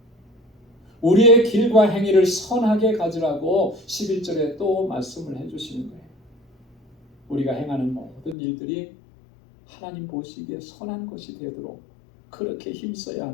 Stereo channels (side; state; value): right; drops out; at 8.3 s